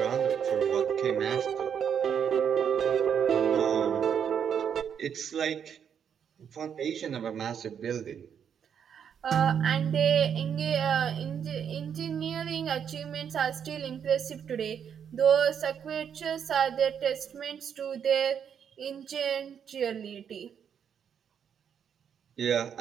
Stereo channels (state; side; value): quieter; left; 8.0 dB